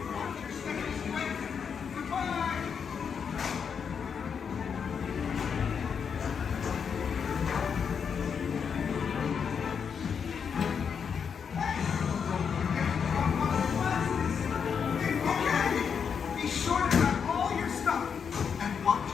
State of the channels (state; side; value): quieter; right; 6.7 dB